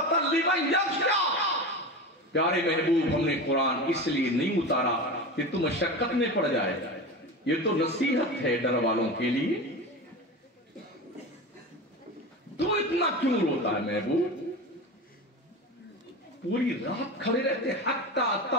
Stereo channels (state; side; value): normal; both; correlation 0.27